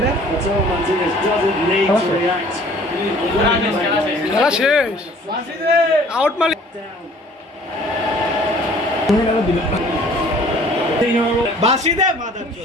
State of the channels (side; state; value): both; normal; correlation 0.53